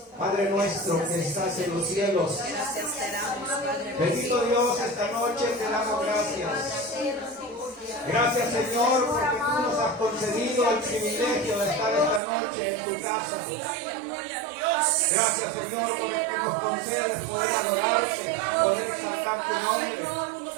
Padre nuestro que estás en los cielos, Gracias te damos, Padre. bendito Dios, esta noche te damos gracias. Gracias, Señor, porque tú nos has concedido el privilegio de estar esta noche en tu casa. Gracias, Señor, porque nos concedes poder adorarte, poder exaltar tu nombre.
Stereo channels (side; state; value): left; drops out; at 12.2 s